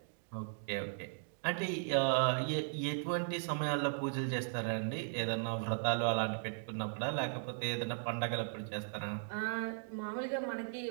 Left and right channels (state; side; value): silent; left; digital silence